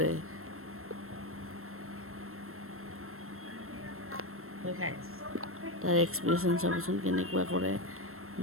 তাৰ এক্সপ্ৰেশ্যন চাবচোন কেনেকুৱা কৰে,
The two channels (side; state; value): left; late; 0.62 ms